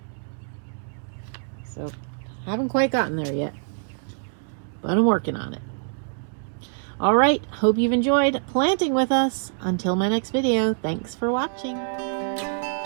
so haven't quite gotten there yet, but I'm working on it. All right, hope you've enjoyed planting with us. Until my next video, thanks for watching.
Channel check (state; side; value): silent; left; digital silence